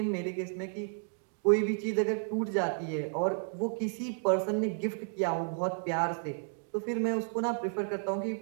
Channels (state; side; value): silent; left; 56 dB below the other